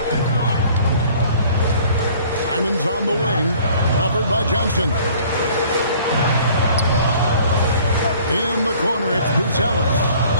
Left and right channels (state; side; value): inverted; both; correlation -0.53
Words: Simon's on the wing. Covered by Johnson. In the corner, it's Buzelis.